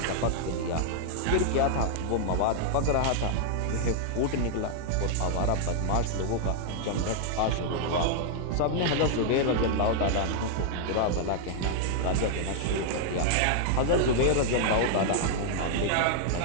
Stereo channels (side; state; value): both; different; correlation -0.01